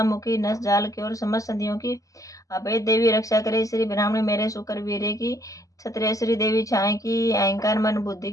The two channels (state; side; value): late; right; 0.16 ms